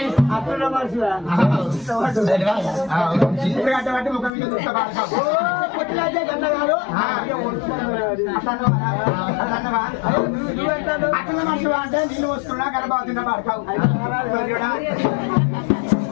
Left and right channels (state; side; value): drops out; right; at 4.3 s